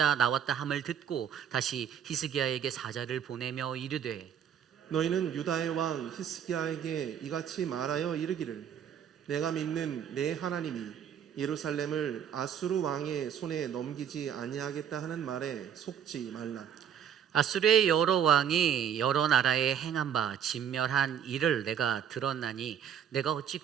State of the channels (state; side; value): quieter; left; 8.7 dB